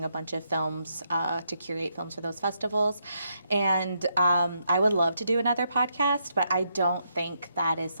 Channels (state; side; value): inverted; both; correlation -0.78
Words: a bunch of films to curate films for those festivals. And I would love to do another podcast, but I don't think that is